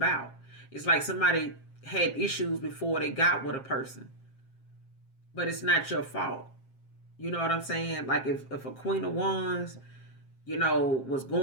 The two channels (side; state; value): right; late; 7.5 ms